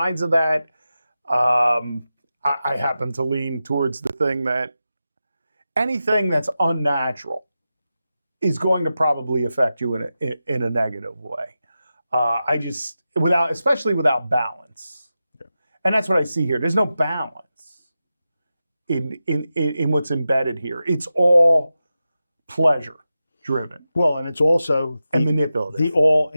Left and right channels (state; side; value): inverted; both; correlation -0.92